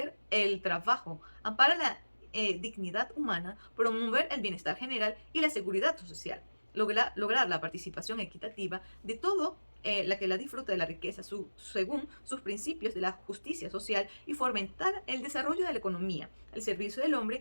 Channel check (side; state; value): both; inverted; correlation -1.00